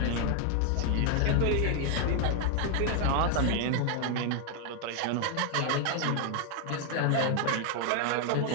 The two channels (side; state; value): both; different; correlation 0.00